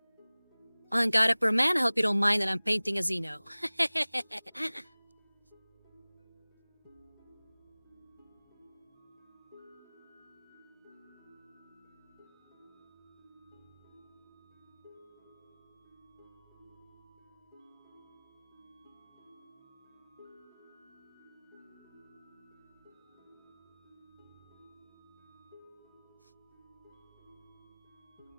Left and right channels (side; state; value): both; inverted; correlation -1.00